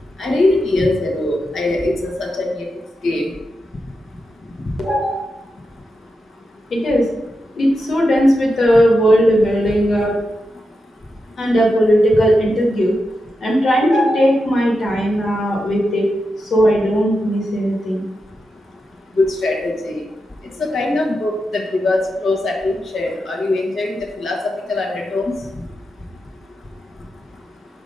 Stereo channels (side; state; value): both; normal; correlation 0.88